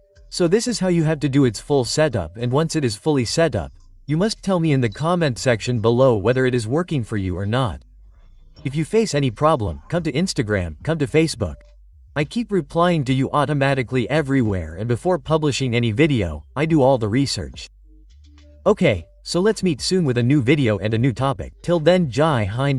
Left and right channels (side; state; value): both; identical; correlation 1.00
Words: So this is how you have to do its full setup, and once it is fully set up, you must tell me in the comment section below whether it is working for you or not. If you face any problem, come to Instagram, come to Facebook. I keep replying to you automatically everywhere, and before publishing any video, I do all the research. Okay. So let's meet soon with a new video and a new topic. Till then, Jai